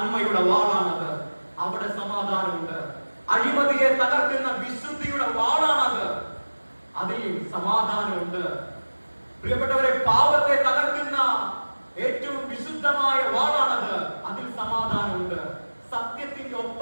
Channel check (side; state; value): both; inverted; correlation -1.00